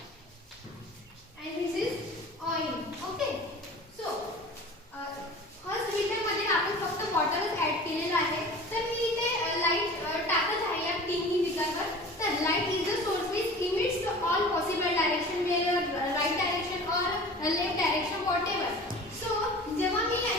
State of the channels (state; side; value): normal; both; correlation 0.40